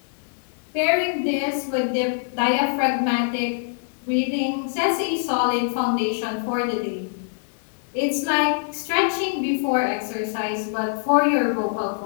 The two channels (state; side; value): silent; right; digital silence